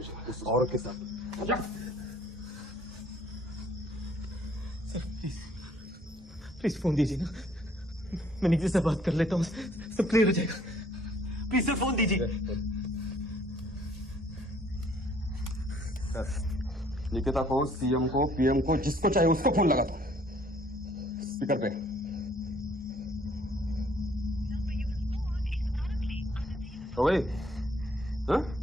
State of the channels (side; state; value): both; normal; correlation 0.61